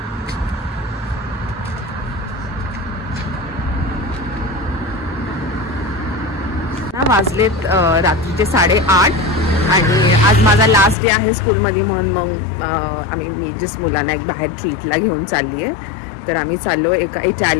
वाजलेत रात्रीचे 8:30 आणि आज माझा लास्ट डे आहे स्कूलमध्ये, म्हणून मग मी जस्ट मुलांना एक बाहेर ट्रीटला घेऊन चालली आहे. तर आम्ही चाललो एका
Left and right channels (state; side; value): drops out; right; at 11.0 s